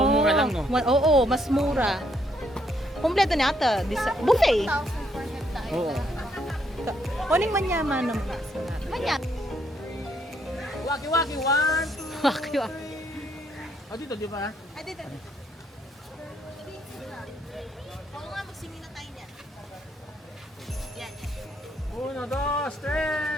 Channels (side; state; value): both; normal; correlation 0.72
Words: mura lang no. Oo, mas mura. Kompleto niya ata. Buffet. 1,400 tayo. Oo. Kuning manyaman naman. Manya. Waki-waki one. Waki. Oh dito di ba? Ay, dito.